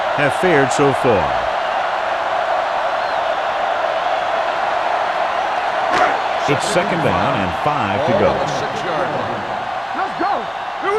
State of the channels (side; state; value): both; identical; correlation 1.00